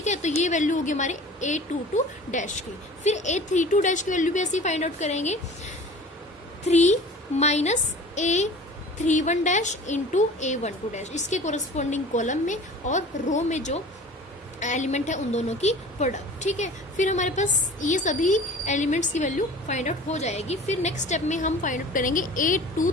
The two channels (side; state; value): both; normal; correlation 0.42